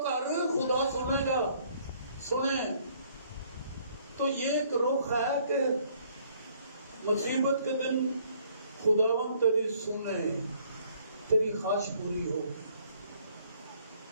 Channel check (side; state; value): both; inverted; correlation -0.62